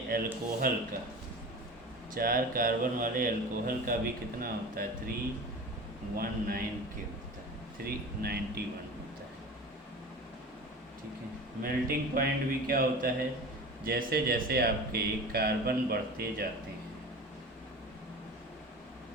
अल्कोहल का, 4 कार्बन वाले अल्कोहल का भी कितना होता है, 319 के होता है, 391 होता है, ठीक है। मेल्टिंग पॉइंट भी क्या होता है, जैसे जैसे आपके कार्बन बढ़ते जाते हैं,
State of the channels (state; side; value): normal; both; correlation 0.34